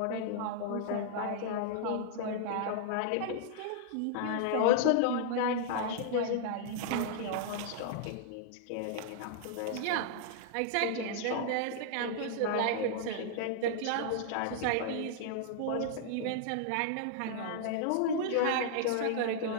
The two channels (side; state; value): both; different; correlation -0.01